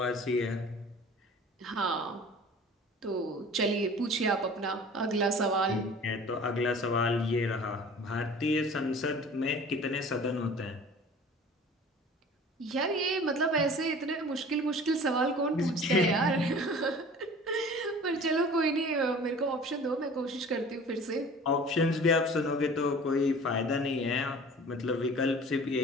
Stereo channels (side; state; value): both; normal; correlation 0.44